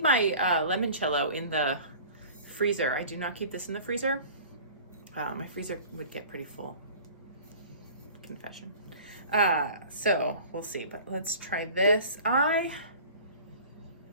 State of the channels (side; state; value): both; inverted; correlation -0.43